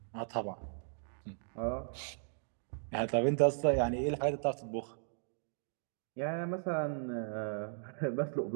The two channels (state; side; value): silent; left; digital silence